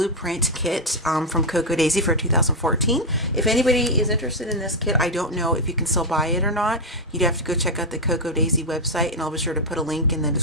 kit from Cocoa Daisy for 2014. If anybody is interested in this kit, I don't know if you can still buy it or not. You'd have to go check out the Cocoa Daisy website, and I'll be sure to put a link in the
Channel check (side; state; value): both; normal; correlation 0.02